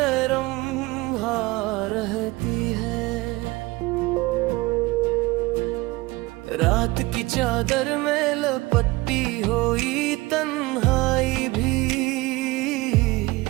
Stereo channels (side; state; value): left; quieter; 21.4 dB